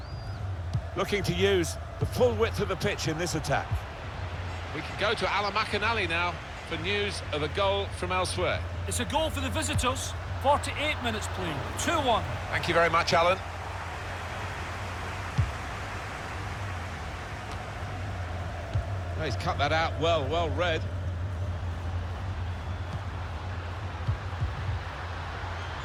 Looking to use the full width of the pitch in this attack. We can go to Alan McInally now for news of a goal from elsewhere. It's a goal for the visitors. 48 minutes played, 2-1. Thank you very much, Alan. Oh, he's cut that out well, well read.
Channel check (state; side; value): identical; both; correlation 1.00